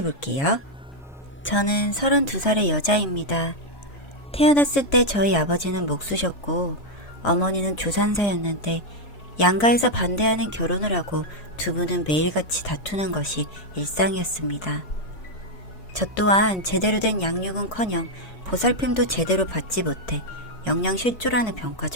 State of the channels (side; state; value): right; late; 4.7 ms